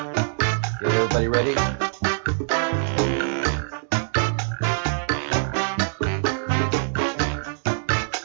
Get everybody ready?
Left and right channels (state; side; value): silent; left; digital silence